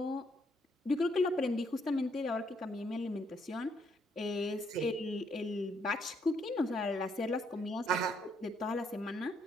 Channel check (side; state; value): both; normal; correlation 0.72